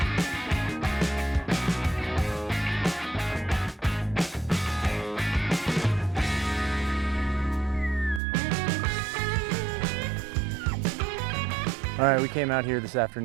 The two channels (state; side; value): drops out; left; at 8.2 s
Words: All right, we came out here this